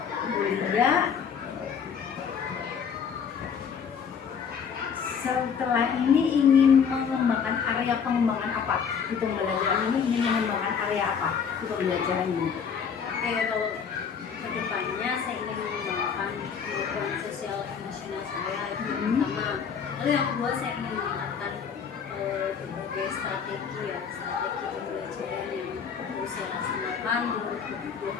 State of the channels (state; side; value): quieter; right; 6.8 dB